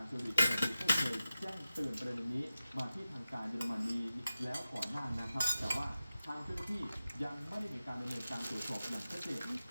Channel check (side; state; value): both; inverted; correlation -0.94